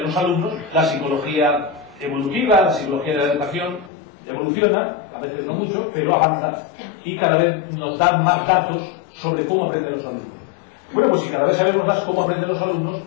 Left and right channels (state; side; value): drops out; right; at 3.9 s